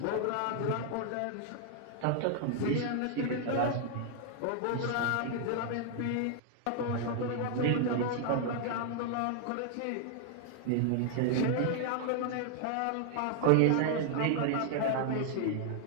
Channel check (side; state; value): both; different; correlation 0.00